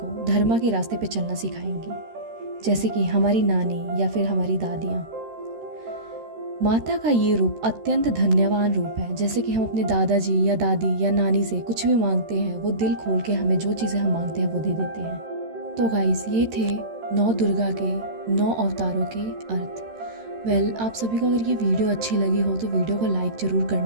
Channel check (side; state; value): left; late; 13 ms